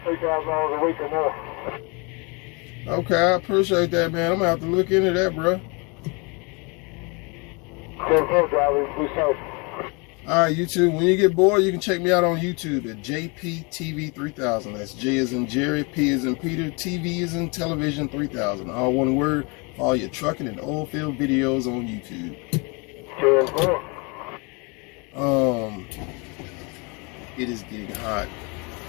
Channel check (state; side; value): quieter; right; 30.7 dB